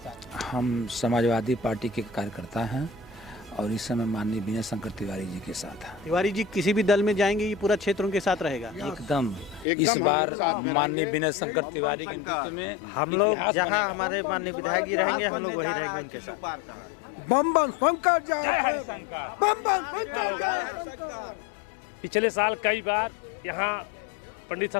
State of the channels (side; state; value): right; drops out; at 9.7 s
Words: हम समाजवादी पार्टी के कार्यकर्ता हैं और इस समय माननीय विनय शंकर तिवारी जी के साथ हैं। तिवारी जी किसी भी दल में जाएंगे ये पूरा क्षेत्र उनके साथ रहेगा? एकदम इस बार माननीय विनय शंकर तिवारी के नेतृत्व में हम लोग जहां हमारे माननीय विधायक जी रहेंगे हम लोग वही रहेंगे उनके साथ। बम बम शंकर जय, बम बम शंकर जय। पिछले साल कई बार यहाँ पंडित